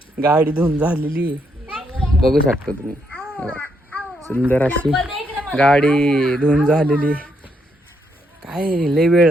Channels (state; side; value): normal; both; correlation 0.77